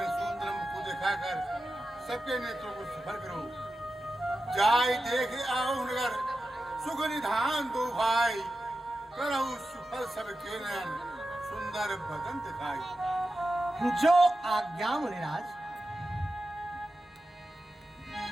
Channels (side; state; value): both; normal; correlation 0.92